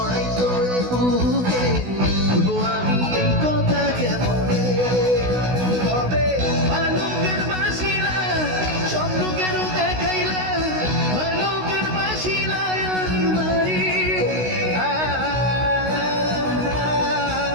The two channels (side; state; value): left; late; 16 ms